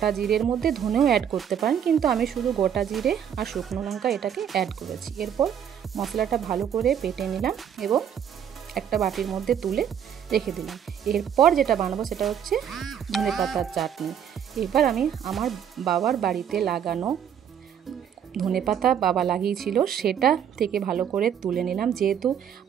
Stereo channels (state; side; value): quieter; left; 8.8 dB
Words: জিরের মধ্যে ধনেও অ্যাড করতে পারেন, কিন্তু আমি শুধু গোটা জিরে আর শুকনো লঙ্কা এটাকে অ্যাড করেছি। এরপর মশলাটা ভালো করে বেটে নিলাম এবং একটা বাটির মধ্যে তুলে রেখে দিলাম। এরপর যেটা বানাবো সেটা হচ্ছে ধনেপাতার চাটনি। এবার আমি আমার বাবার বাড়িতে লাগানো ধনেপাতা বাবা লাগিয়েছিল, সেটা থেকে ভালো করে তুলে নিলাম। যেহেতু